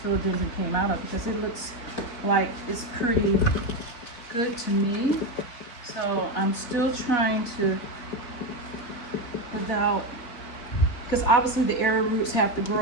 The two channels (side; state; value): right; late; 4.1 ms